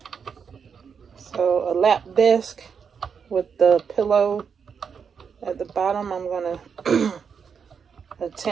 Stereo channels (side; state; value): left; quieter; 6.5 dB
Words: So a lap desk with the pillow at the bottom. I'm gonna